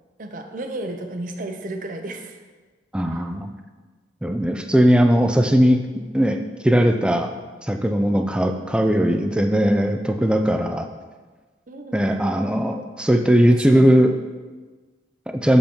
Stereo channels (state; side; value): normal; both; correlation 0.93